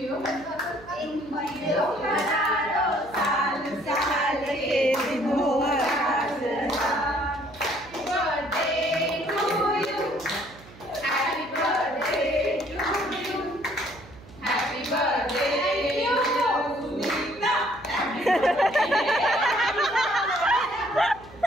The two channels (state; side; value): noise; right; hum, 21 dB below the sound